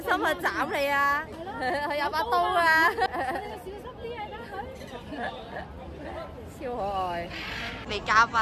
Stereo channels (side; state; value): both; identical; correlation 1.00